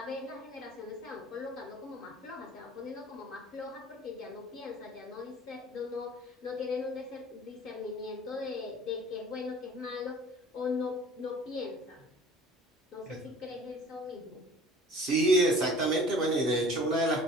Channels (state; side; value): normal; both; correlation 0.47